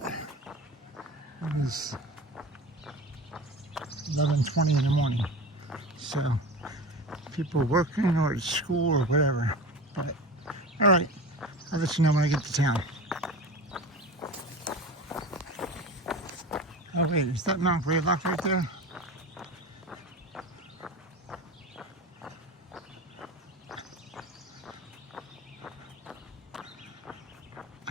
It is 11:20 in the morning, so people are working or at school or whatever. But all right, I'll let you know when I get to town. Oh wait, is that Mount Greylock right there?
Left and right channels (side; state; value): both; normal; correlation 0.31